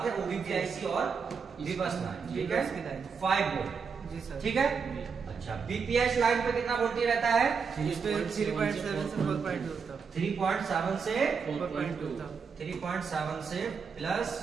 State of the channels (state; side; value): quieter; left; 5.8 dB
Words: है, ओबीपी आईसी और बीबस लाइन, ठीक है। 5 वोल्ट, जी सर, ठीक है। अच्छा, बीपीएच लाइन पे कितना वोल्टेज रहता है? 3.7 से 4.2 तक। 3.7 से 4.2 तक। 3.7 से प्लस